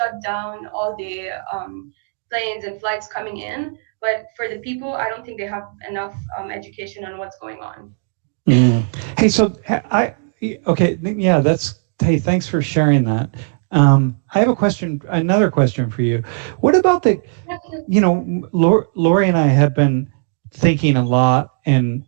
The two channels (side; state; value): left; silent; 67 dB below the other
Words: down all the planes and flights coming in. But for the people, I don't think they have enough education on what's going on. Hey, so hey, thanks for sharing that. I have another question for you. What about Lori and I have been thinking a lot